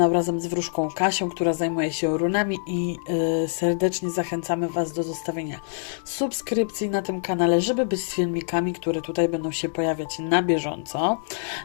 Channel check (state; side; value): silent; right; digital silence